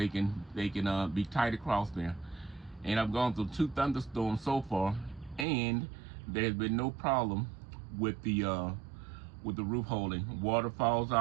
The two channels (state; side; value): drops out; left; at 5.5 s